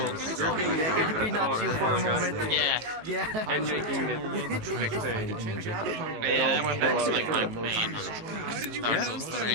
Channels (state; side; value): late; left; 18 ms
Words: Could be not you for a moment. Yeah. And making it Yeah, that's like my main Dark Souls 3.